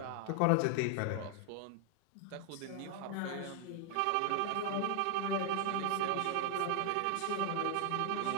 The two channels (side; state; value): both; different; correlation 0.00